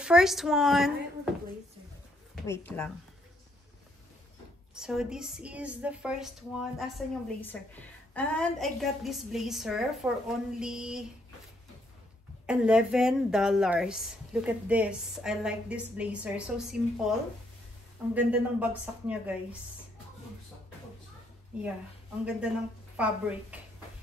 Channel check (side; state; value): both; normal; correlation 0.72